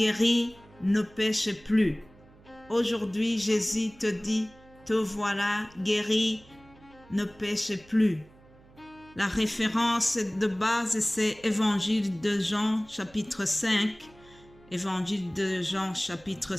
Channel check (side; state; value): right; noise; hum, 26 dB below the sound